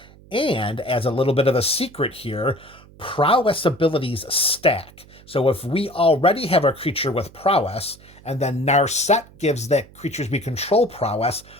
And as a little bit of a secret here, prowess abilities stack. So if we already have a creature with prowess, and then Narset gives that creatures we control prowess,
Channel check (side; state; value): right; noise; hum, 23 dB below the sound